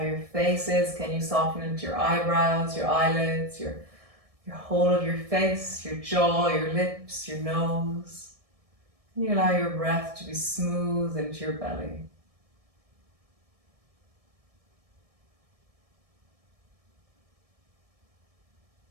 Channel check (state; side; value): late; left; 1.7 ms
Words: your face is. Can you soften into your eyebrows, your eyelids, your whole of your face, your jaw, your lips, your nose? You allow your breath to be smooth into your belly.